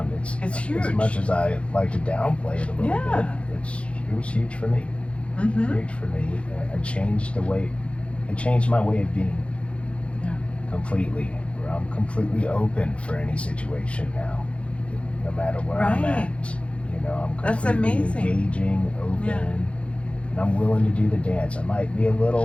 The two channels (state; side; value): late; right; 0.061 ms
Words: It's huge. As much as I like to downplay it a little Yeah. bit, it was huge for me. Mm-hmm. Huge for me. It changed my way of being. Yeah. Completely. Where I'm completely open for any situation now, no matter where I'm Right. at. I'm That's completely amazing. engaging, open, Yeah. and I'm willing to do the dance. I might be a